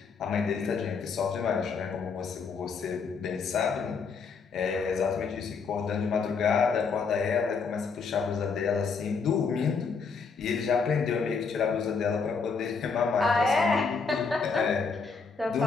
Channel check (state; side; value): quieter; right; 5.2 dB